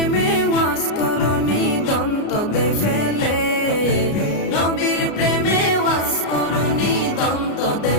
ওয়াজ করনি দন্ত দে ফেলে, নবীর প্রেমে ওয়াজ করনি দন্ত দে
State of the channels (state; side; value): late; right; 33 ms